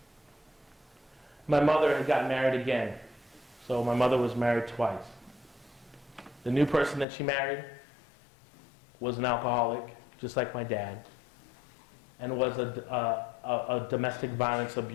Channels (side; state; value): right; drops out; at 7.1 s